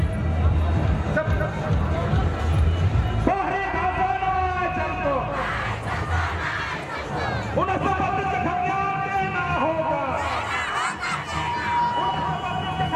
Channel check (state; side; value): identical; both; correlation 1.00